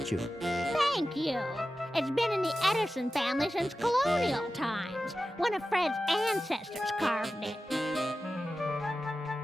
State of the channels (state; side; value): normal; both; correlation 0.93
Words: Thank you. It's been in the Edison family since colonial times. One of Fred's ancestors carved it.